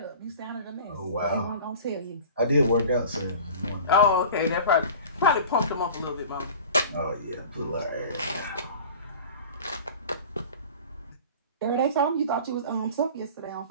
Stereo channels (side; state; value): both; inverted; correlation -0.40